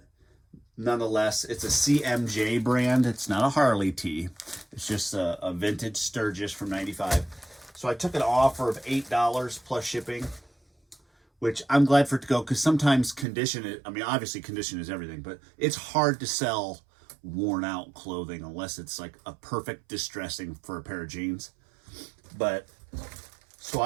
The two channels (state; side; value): drops out; left; at 13.2 s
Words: nonetheless, it's a CMJ brand. It's not a Harley tee. It's just a vintage Sturgis from 95. So I took an offer of $8 plus shipping, which I'm glad for it to go, because sometimes condition, I mean, obviously condition is everything, but it's hard to sell worn out clothing unless it's like a perfect distressing for a pair of jeans. But so